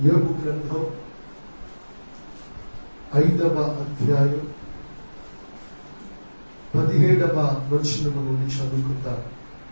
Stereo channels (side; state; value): both; inverted; correlation -1.00